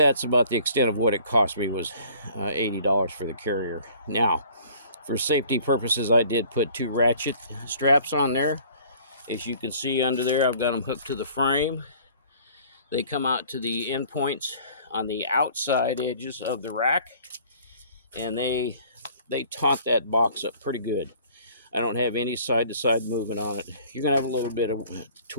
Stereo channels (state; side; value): inverted; both; correlation -0.52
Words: about the extent of what it cost me, was $80 for the carrier. Now, for safety purposes, I did put 2 ratchet straps on there. As you can see under there, I've got them hooked to the frame. They come out to the end points on the outside edges of the rack, and they taut that box up pretty good. I don't have any side-to-side movement on it. You're gonna have a little bit of